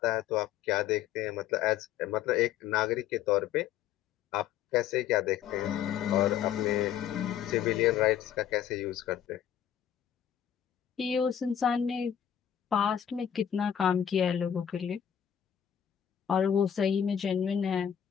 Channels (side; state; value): right; quieter; 9.6 dB